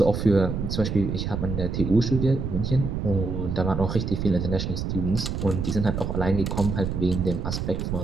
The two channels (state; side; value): noise; right; rumble, 3 dB below the sound